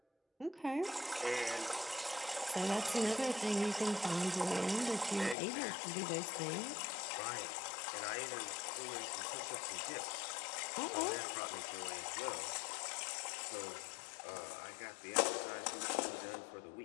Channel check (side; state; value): right; drops out; at 5.4 s